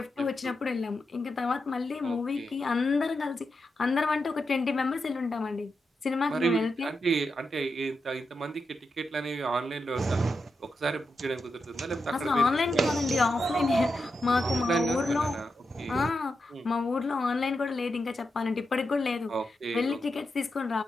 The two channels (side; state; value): both; normal; correlation 0.87